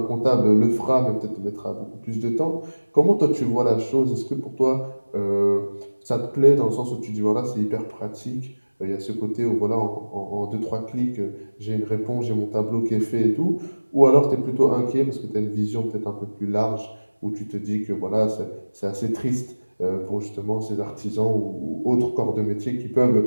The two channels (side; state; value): both; inverted; correlation -1.00